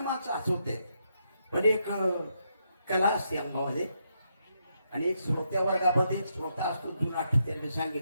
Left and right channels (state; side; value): inverted; both; correlation -0.80